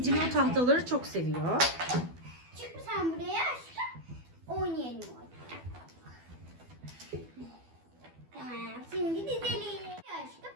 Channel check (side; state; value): left; late; 12 ms